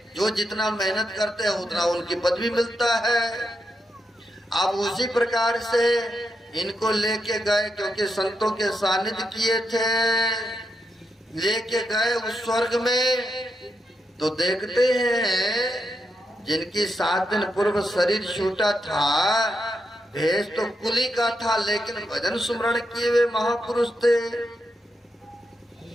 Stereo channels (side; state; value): both; normal; correlation 0.83